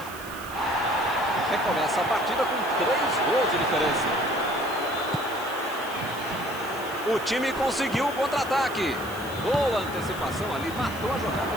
Recomeça a partida com 3 gols de diferença. O time conseguiu o contra-ataque. Boa antecipação ali, matou a jogada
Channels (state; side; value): noise; left; hiss, 16 dB below the sound